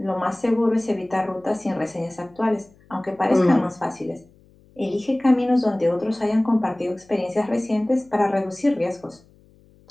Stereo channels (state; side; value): noise; left; hum, 29 dB below the sound